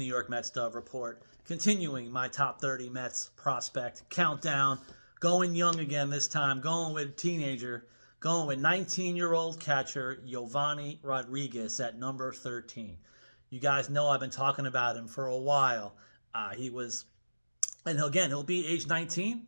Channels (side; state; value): both; inverted; correlation -1.00